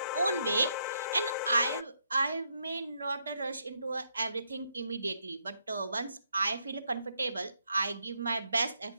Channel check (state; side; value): inverted; both; correlation -0.77